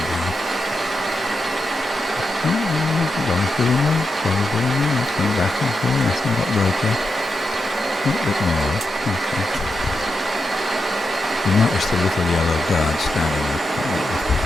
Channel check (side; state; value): both; normal; correlation 0.87